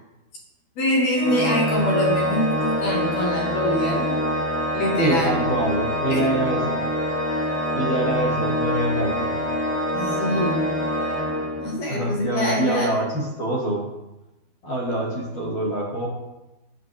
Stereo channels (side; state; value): right; late; 12 ms